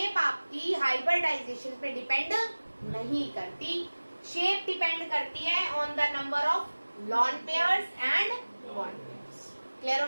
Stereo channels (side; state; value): both; inverted; correlation -1.00